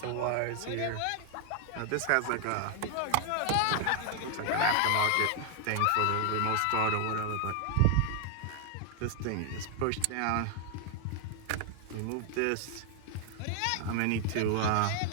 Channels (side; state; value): both; different; correlation 0.00